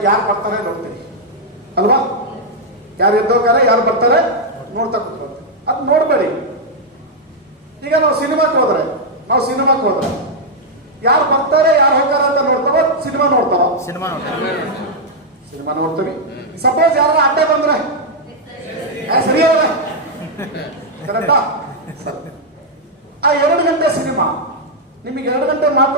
ಯಾರು ಬರ್ತಾರೆ ನೋಡ್ತೀರಿ ಅಲ್ವಾ? ಯಾರು ಎದ್ದೋಗ್ತಾರೆ, ಯಾರು ಬರ್ತಾರೆ ನೋಡ್ತಾ ಕೂತ್ಕೊಳ್ತೀವಿ. ಅದು ನೋಡ್ಬೇಡಿ. ಈಗ ನಾವು ಸಿನಿಮಾಕ್ಕೆ ಹೋದ್ರೆ ಯಾರು ಬರ್ತಾರೆ, ಯಾರು ಹೋಗ್ತಾರೆ ಅಂತ ನೋಡ್ತಾವ, ಸಿನಿಮಾ ನೋಡ್ತೀವಿ. ಸಪೋಸ್ ಯಾರು ಅಡ್ಡ ಬಂದ್ರೆ ಸರಿ ಕರೆಕ್ಟಾ? ಆ 2 ಗಂಟೆ ಸಿನಿಮಾ ನಿಮಗೆ 2 ಗಂಟೆ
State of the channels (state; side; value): normal; both; correlation -0.03